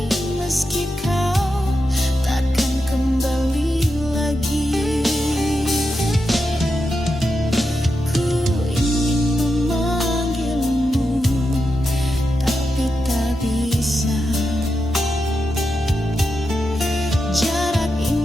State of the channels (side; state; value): both; normal; correlation 0.87